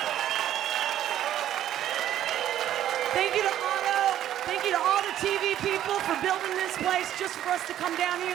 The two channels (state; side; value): quieter; left; 11.7 dB